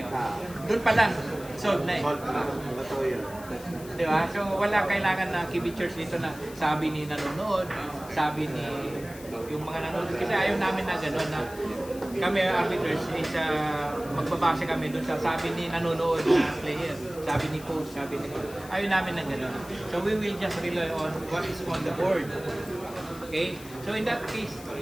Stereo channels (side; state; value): left; noise; hiss, 18 dB below the sound